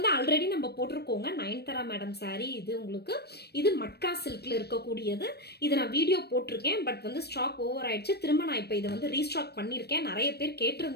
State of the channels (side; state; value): right; late; 0.47 ms